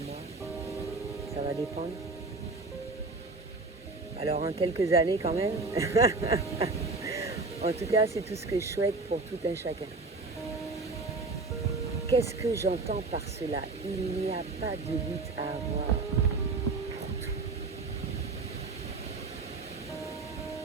mois. Ça va dépendre. Alors en quelques années quand même. En tout cas, c'est tout ce que je souhaite pour tout un chacun. Qu'est-ce que j'entends par cela? Il n'y a pas de lutte à avoir pour tout.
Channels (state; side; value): quieter; left; 3.6 dB